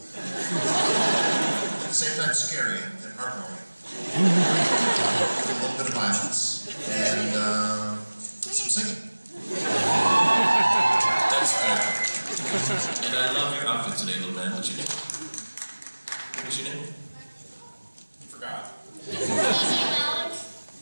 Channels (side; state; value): both; inverted; correlation -1.00